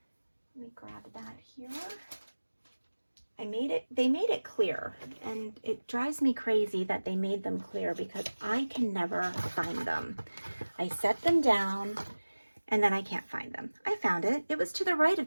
me grab that here. They made it clear, and it drives me crazy that they made them clear because I can never find them. I set them down and then I can't find them. I found it. It was to the right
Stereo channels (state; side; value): inverted; both; correlation -1.00